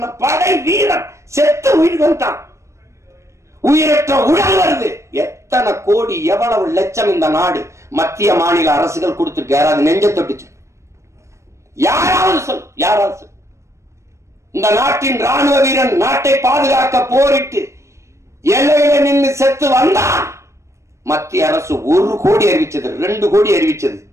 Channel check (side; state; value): left; late; 0.14 ms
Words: படை வீரன் செத்து உயிர் வந்துட்டான். உயிரற்ற உடல் வருது. எத்தனை கோடி, எவ்வளவு லட்சம் இந்த நாடு மத்திய மாநில அரசுகள் கொடுத்துட்டு யாராவது நெஞ்ச தொட்டுச்சு? யாராவது சொல், யாராவது சொல். இந்த நாட்டின் ராணுவ வீரன் நாட்டை பாதுகாக்க போரிட்டு எல்லையில நின்று செத்து வந்தான். மத்திய அரசு 1 கோடி அறிவிச்சது, 2 கோடி அறிவிச்சது,